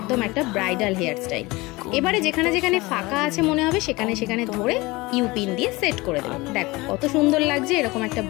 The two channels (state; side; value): quieter; right; 22.3 dB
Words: একটা ব্রাইডাল হেয়ার স্টাইল। এবারে যেখানে যেখানে ফাঁকা আছে মনে হবে সেখানে সেখানে ধরে ইউপিন দিয়ে সেট করে দেবে। দেখো কত সুন্দর লাগছে এরকম একটা